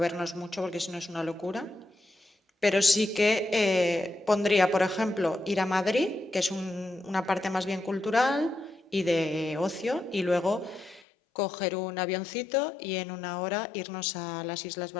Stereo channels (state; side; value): drops out; right; at 11.1 s